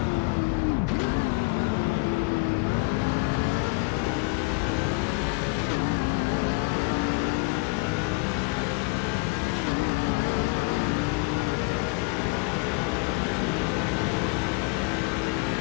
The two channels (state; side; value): quieter; right; 27.4 dB